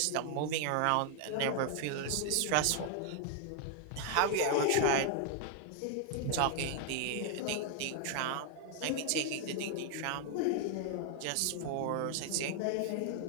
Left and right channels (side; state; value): both; different; correlation 0.00